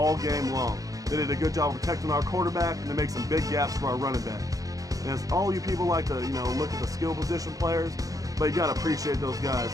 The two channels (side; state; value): left; late; 0.17 ms